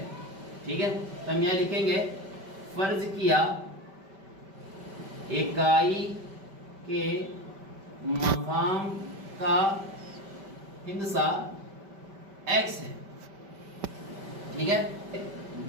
ठीक है। तो हम यहाँ लिखेंगे फर्ज किया इकाई के मकाम का हिंसा x है, ठीक है।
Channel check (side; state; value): left; late; 5.1 ms